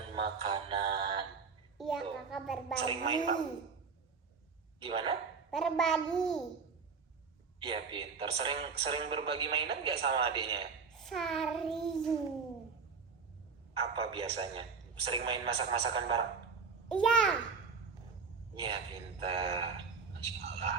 makanan. Iya, Tuh. kakak berbagi. Sering main, Pak? Gimana? Berbagi. Iya, pintar. Sering berbagi mainan nggak sama adiknya? Sering. Apa biasanya? Sering main masak-masakan bareng? Iya. Iya, pintar. Masya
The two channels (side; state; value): left; quieter; 5.1 dB